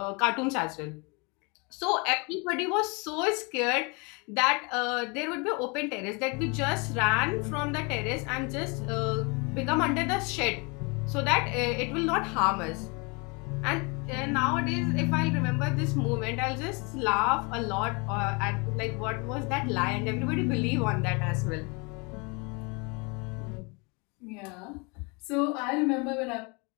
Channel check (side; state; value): right; quieter; 30.6 dB